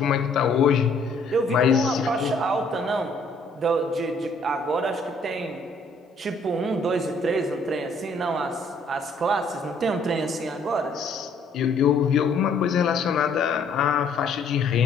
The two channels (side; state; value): right; quieter; 3.0 dB